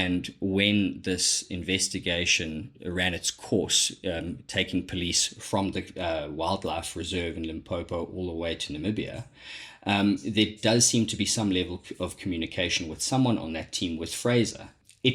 when this investigation ran its course, taking police from the wildlife reserve in Limpopo all the way to Namibia, there does seem to be some level of communication with someone on that team with Fraser.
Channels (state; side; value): identical; both; correlation 1.00